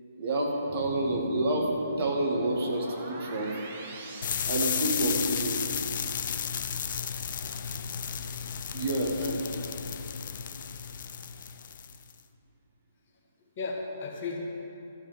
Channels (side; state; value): both; inverted; correlation -0.63